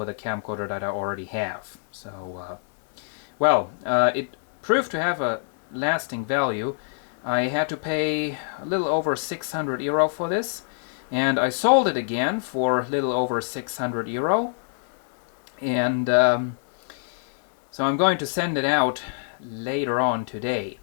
the camcorder that I already have. So, it proved to have a lasting value. I had to pay a little over €600 for this. And I sold it again for a little over €600, and so I'm going to send it out later on today.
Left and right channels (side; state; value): right; silent; digital silence